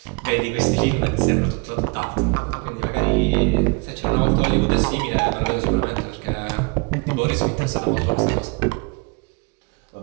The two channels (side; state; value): left; quieter; 31.5 dB